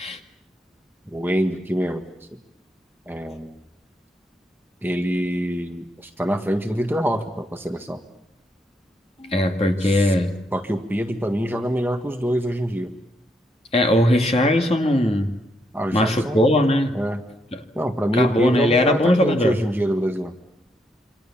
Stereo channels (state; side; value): normal; both; correlation 0.77